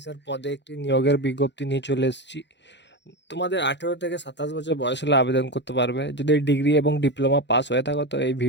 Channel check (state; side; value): late; right; 0.52 ms